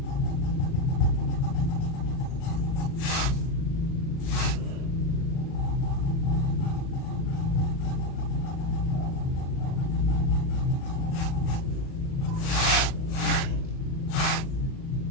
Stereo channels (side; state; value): right; late; 37 ms